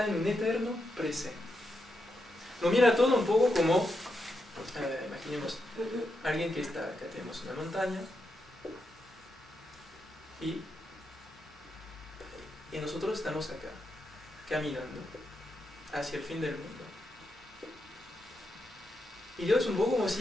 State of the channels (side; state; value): both; normal; correlation 0.84